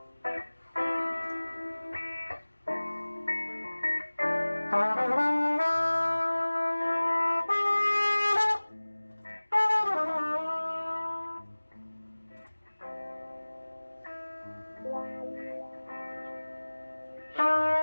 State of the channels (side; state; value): both; inverted; correlation -1.00